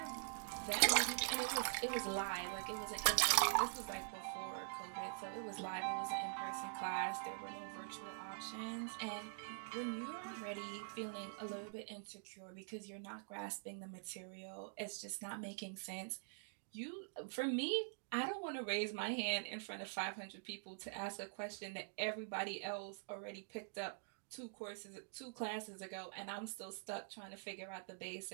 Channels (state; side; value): silent; left; digital silence